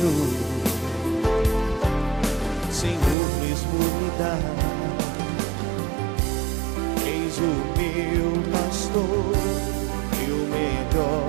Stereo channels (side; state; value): left; drops out; at 3.2 s